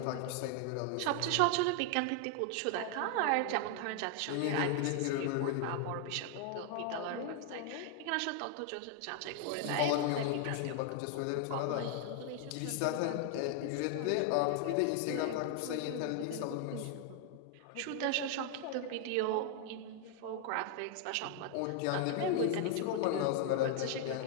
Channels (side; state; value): both; different; correlation 0.00